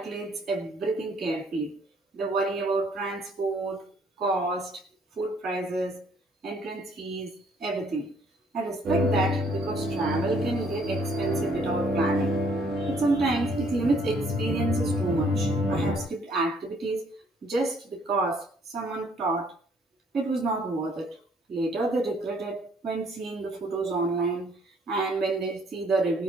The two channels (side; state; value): both; normal; correlation 0.63